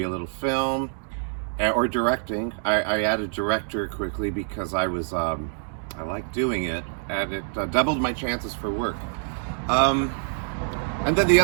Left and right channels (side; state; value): left; silent; 61 dB below the other